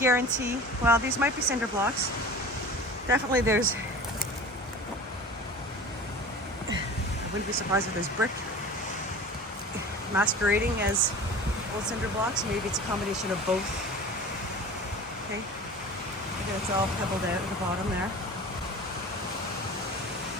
well, these might be cinder blocks. Definitely there's, I wouldn't be surprised if there's brick masquerading as old cinder blocks. Maybe it's a combination of both. Okay, again, it's all pebbled out at the bottom there.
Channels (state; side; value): normal; both; correlation 0.38